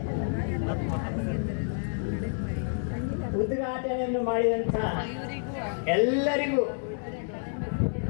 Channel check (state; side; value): silent; right; digital silence